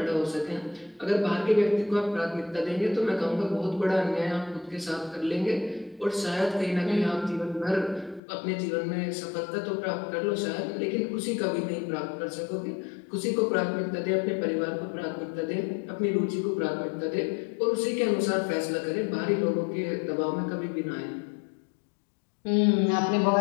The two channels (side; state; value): right; drops out; at 8.2 s